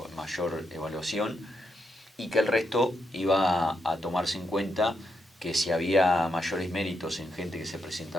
mayor evaluación, y que el resto iba a tomarse en cuenta que si había mayores méritos en gente que se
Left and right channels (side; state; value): both; normal; correlation 0.81